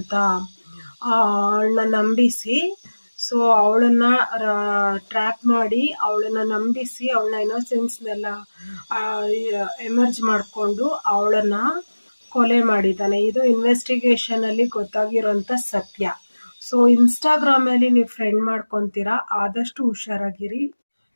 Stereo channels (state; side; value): inverted; both; correlation -1.00